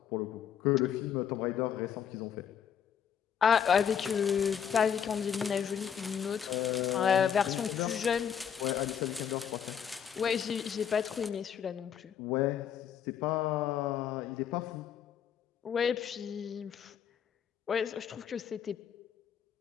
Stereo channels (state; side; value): quieter; right; 8.3 dB